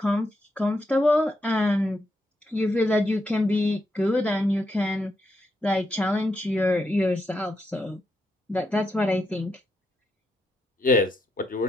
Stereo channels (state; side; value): normal; both; correlation 0.82